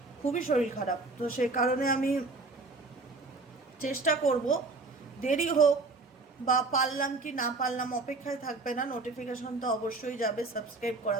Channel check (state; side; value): quieter; left; 3.5 dB